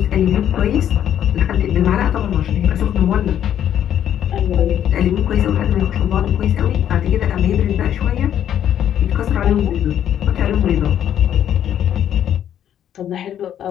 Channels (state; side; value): quieter; right; 10.3 dB